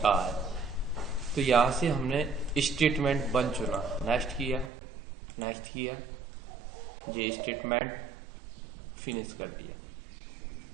है। तो यहां से हमने स्टेटमेंट बन चुना। नेक्स्ट किया, नेक्स्ट किया, ये स्टेटमेंट फिनिश कर दिया,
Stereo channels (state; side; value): drops out; left; at 4.7 s